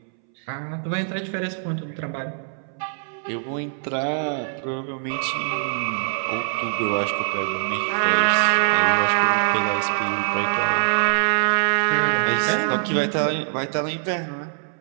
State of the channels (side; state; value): left; silent; 63 dB below the other